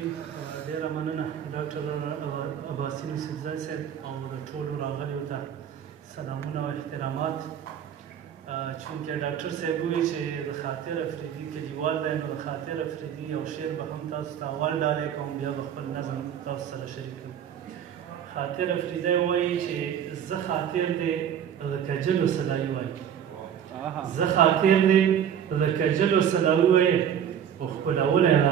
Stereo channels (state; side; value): quieter; left; 9.1 dB